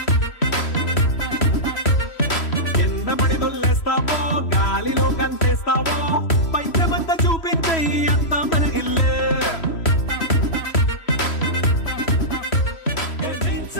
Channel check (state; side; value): late; right; 3.1 ms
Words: కింద పడి దొల్లేస్తావో గాలిలో కంటేస్తావో పైచమంతా చూపించే అంతా మన ఇల్లే జీన్స్